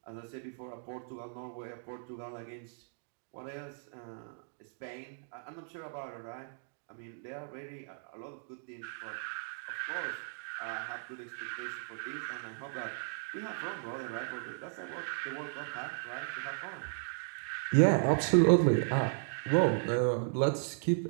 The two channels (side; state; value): left; silent; digital silence